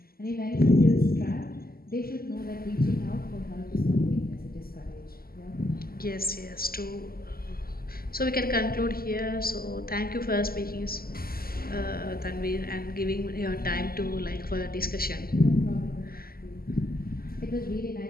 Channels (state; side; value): late; right; 0.43 ms